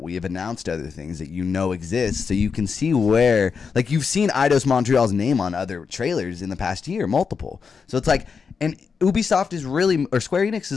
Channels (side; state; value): right; quieter; 5.7 dB